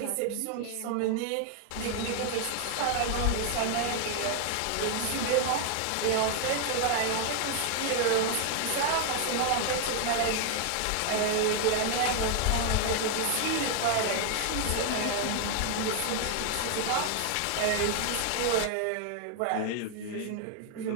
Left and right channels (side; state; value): both; different; correlation 0.00